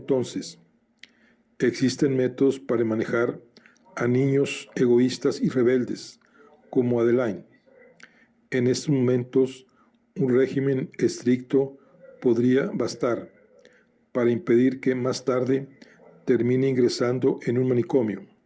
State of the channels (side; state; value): both; identical; correlation 1.00